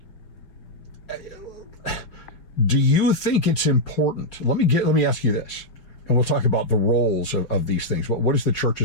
do you think it's important? Let me ask you this, and we'll talk about the roles of these things. What is the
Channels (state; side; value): late; right; 5.4 ms